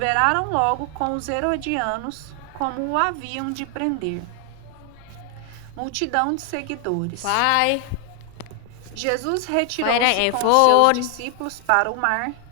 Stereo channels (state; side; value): different; both; correlation 0.00